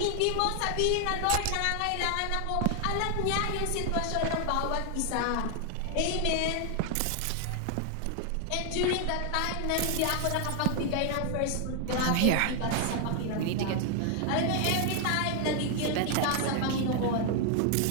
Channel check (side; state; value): both; different; correlation 0.00